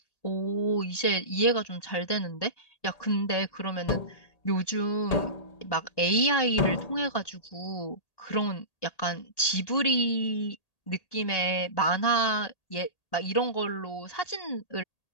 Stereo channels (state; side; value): late; right; 1.8 ms